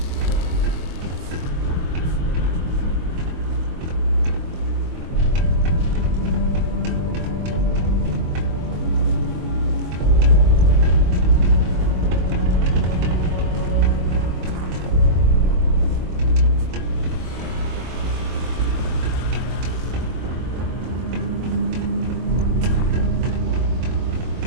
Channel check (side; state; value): left; late; 23 ms